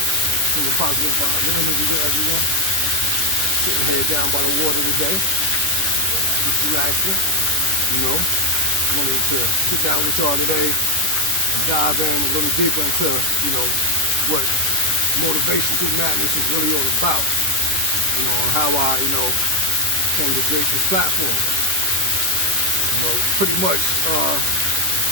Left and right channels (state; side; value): late; left; 10 ms